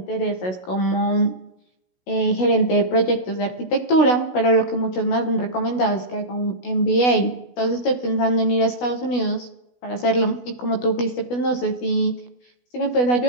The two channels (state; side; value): late; right; 16 ms